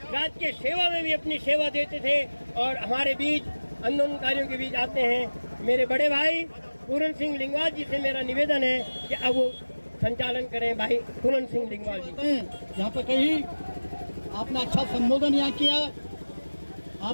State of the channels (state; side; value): inverted; both; correlation -1.00